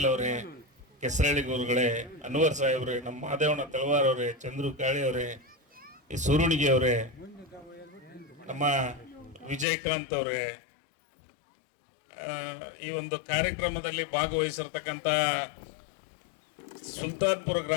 ಅವರೇ, ಕೆಸರಳ್ಳಿ ಗುರುಗಳೇ, ಅನ್ವರ್ ಸಾಹೇಬ್ರೆ, ನಮ್ಮ ಮಾದೇವಣ್ಣ ತಳವಾರ್ ಅವರೇ, ಚಂದ್ರು ಕಾಳಿ ಅವರೇ, ಈ ಸುರುಣಿಗೆ ಅವರೇ, ನಮ್ಮ ವಿಜಯಕಾಂತ್ ಅವರೇ, ಈ ಒಂದು ಕಾರ್ಯಕ್ರಮದಲ್ಲಿ ಭಾಗವಹಿಸಿರ್ತಕ್ಕಂಥ ಸುಲ್ತಾನ್ಪುರ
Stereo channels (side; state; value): right; drops out; at 9.7 s